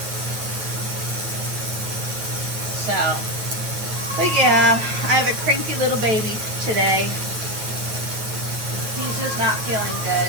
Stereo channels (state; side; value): late; left; 9.0 ms